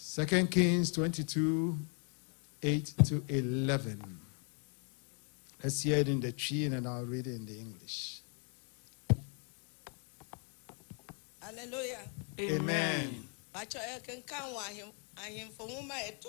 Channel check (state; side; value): quieter; right; 39.9 dB